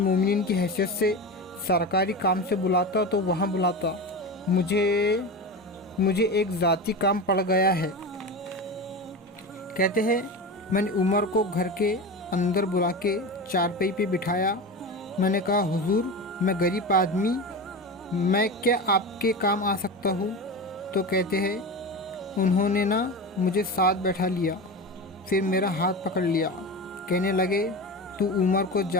کی حیثیت سے سرکاری کام سے بلاتا تو وہاں بلاتا، مجھے ایک ذاتی کام پڑ گیا ہے۔ کہتے ہیں میں نے عمر کو گھر کے اندر بلا کے چارپائی پہ بٹھایا، میں نے کہا حضور میں غریب آدمی، میں کیا آپ کے کام آ سکتا ہوں؟ تو کہتے ہیں انہوں نے نا مجھے ساتھ بیٹھا لیا، پھر میرا ہاتھ پکڑ لیا، کہنے لگے تو عمر کو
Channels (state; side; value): normal; both; correlation 0.25